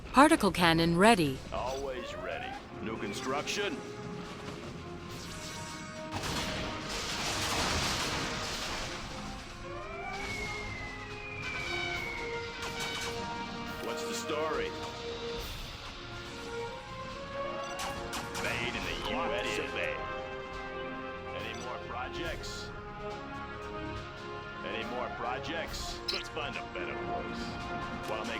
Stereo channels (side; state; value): both; identical; correlation 1.00